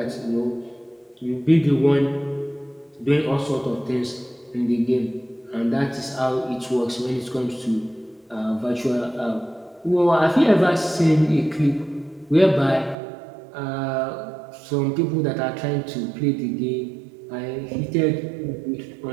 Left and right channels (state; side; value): drops out; left; at 13.0 s